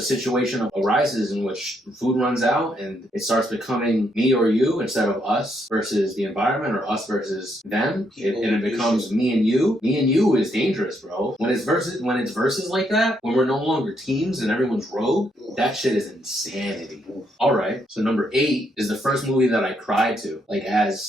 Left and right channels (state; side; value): normal; both; correlation 0.76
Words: situation arises in which food runs out and it starts becoming me or you instead of us versus the environment or us versus them, and it becomes me and you. Me and you is dangerous, bro. When it's versus like that, when we're no longer teams and everyone's rogue, that shit is insanity. All right. So number 8 is the first movie that I cried to, like